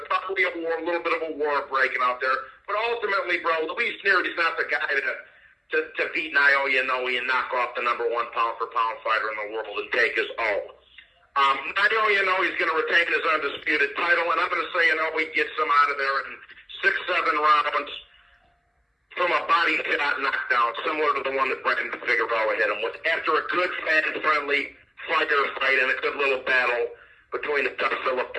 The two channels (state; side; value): identical; both; correlation 1.00